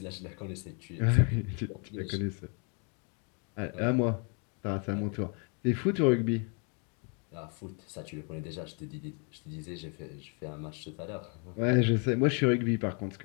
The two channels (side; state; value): right; quieter; 37.4 dB